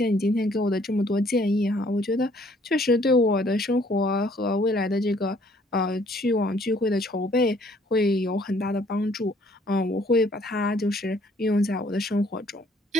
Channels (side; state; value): both; normal; correlation 0.62